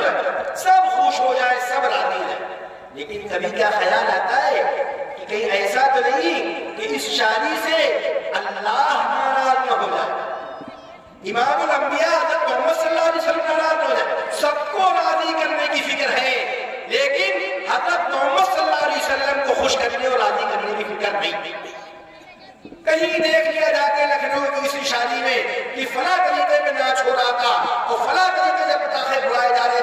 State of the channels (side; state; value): both; identical; correlation 1.00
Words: رہا ہے؟ سب خوش ہو جائے، سب راضی ہو جائے. لیکن کبھی کیا خیال آتا ہے کہ کہیں ایسا تو نہیں کہ اس شادی سے اللہ ناراض نہ ہو جائے، امام الانبیاء حضرت محمد صلی اللہ علیہ وسلم ناراض ہو جائے. سب کو راضی کرنے کی فکر ہے، لیکن حضرت محمد صلی اللہ علیہ وسلم کو خوش کرنے اور راضی کرنے کی فکر نہیں. کہیں دیکھ لیا جا کے لکھنؤ کی کسی شادی میں کہ فلاں طریقے میں ناچ ہو رہا تھا، اور فلاں طریقے سے پٹاخے اڑائے جا رہے